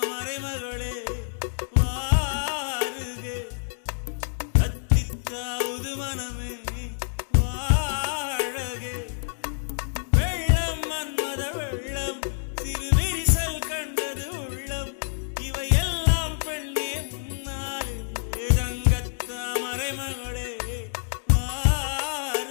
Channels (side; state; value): right; silent; digital silence